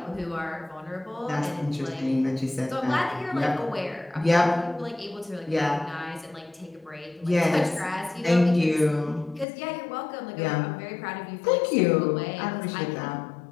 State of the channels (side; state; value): right; drops out; at 9.5 s